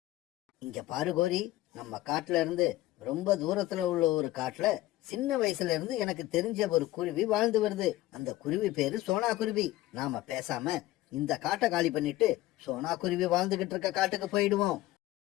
இங்க பாரு கோரி, நம்ம காட்டுல இருந்து ரொம்ப தூரத்துல உள்ள ஒரு காட்டுல சின்ன வயசுல இருந்து எனக்கு தெரிஞ்ச ஒரு குருவி வாழ்ந்து வருது. அந்த குருவி பேரு சோனா குருவி. நாம பேசாம இந்த காட்டை காலி பண்ணிட்டு சோனா குருவி வாழ்ந்துகிட்டு இருக்க காட்டுக்கு போயிடுவோம்.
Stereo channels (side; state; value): right; quieter; 16.3 dB